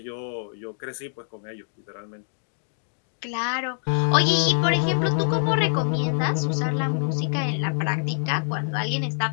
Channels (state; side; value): silent; right; digital silence